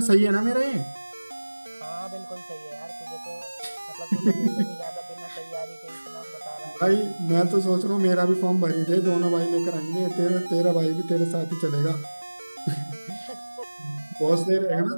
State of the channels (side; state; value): both; inverted; correlation -1.00